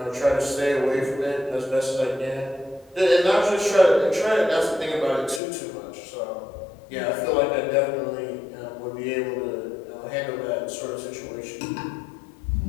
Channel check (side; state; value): right; drops out; at 5.4 s